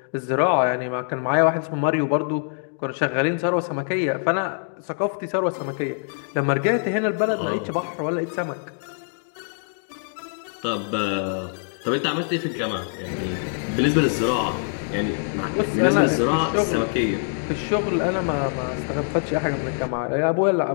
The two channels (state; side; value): silent; right; digital silence